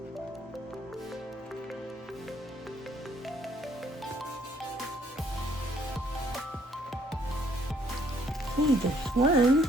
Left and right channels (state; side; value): normal; both; correlation 0.65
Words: See, there's one.